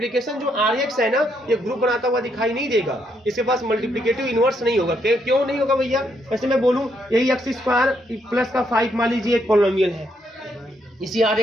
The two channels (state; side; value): normal; both; correlation 0.75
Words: जो rx है ना, ये ग्रुप बनाता हुआ दिखाई नहीं देगा, इसके पास मल्टीप्लिकेटिव इनवर्स नहीं होगा। क्यों नहीं होगा भैया? वैसे मैं बोलूं, यही x² प्लस का 5 मान लीजिए एक पॉलिनोमियल है, इसी